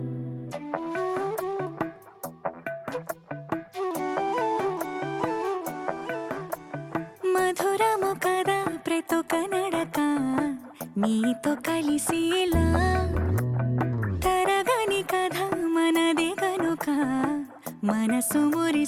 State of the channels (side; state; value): both; identical; correlation 1.00